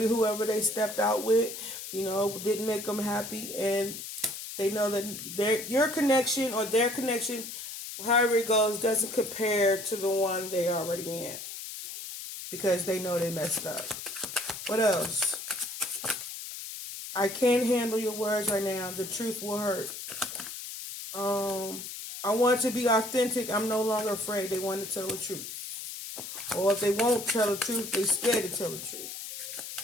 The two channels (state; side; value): noise; left; hiss, 9 dB below the sound